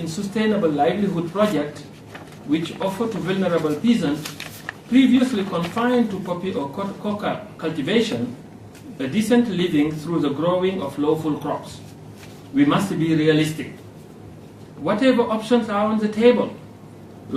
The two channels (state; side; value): identical; both; correlation 1.00